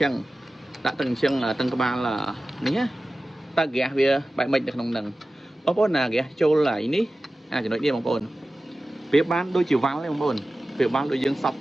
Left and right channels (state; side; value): normal; both; correlation 0.96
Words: ចឹងតឹងក្បាលនេះណាតើហ្គាសវាបែបម៉េចនៅក្នុងនឹងបងប្អូនណាហ្គាសចូលហើយនេះចំណុចនេះបងប្អូនវាបានដូចជាវ៉ាល់ទេបងប្អូនវាបានដូចយើងសប់